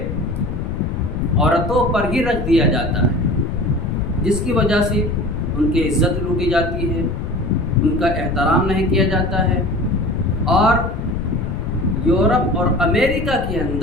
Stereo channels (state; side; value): noise; left; rumble, 4 dB below the sound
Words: عورتوں پر ہی رکھ دیا جاتا ہے، جس کی وجہ سے ان کی عزت لوٹی جاتی ہے، ان کا احترام نہیں کیا جاتا ہے، اور یورپ اور امریکہ کے